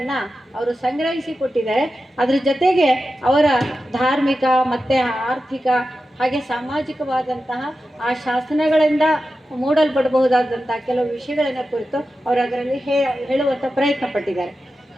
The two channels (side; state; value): both; normal; correlation 0.92